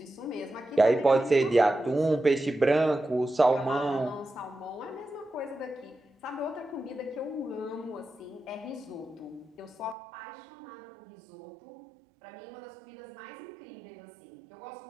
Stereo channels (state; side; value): drops out; left; at 10.0 s